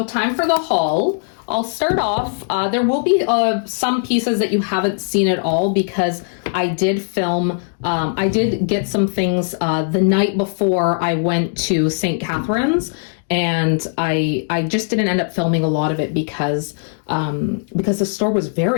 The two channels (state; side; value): silent; right; 64 dB below the other